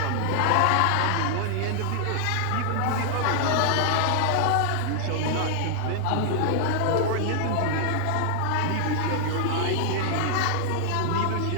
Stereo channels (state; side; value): different; both; correlation -0.01